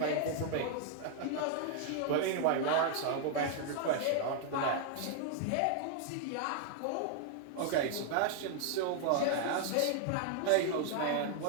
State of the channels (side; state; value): both; different; correlation 0.00